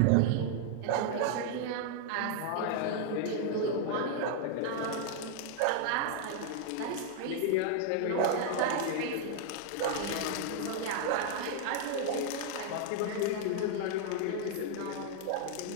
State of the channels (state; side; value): different; both; correlation -0.01